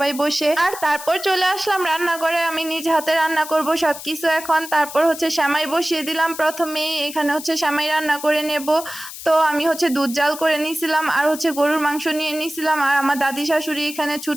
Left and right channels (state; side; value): noise; left; hiss, 12 dB below the sound